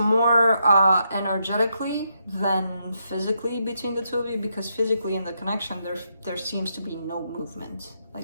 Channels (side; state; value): both; inverted; correlation -0.80